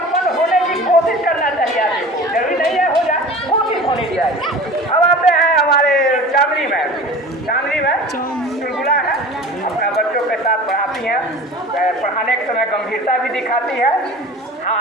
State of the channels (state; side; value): normal; both; correlation 0.39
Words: होने की कोशिश करना चाहिए आदमी को, जरूरी नहीं है हो जाए, कोशिश होनी चाहिए। अब आते हैं हमारे चांदनी में चुलबुला है, अपना बच्चों के साथ पढ़ाती हैं, पढ़ाने के समय गंभीरता भी दिखाती है।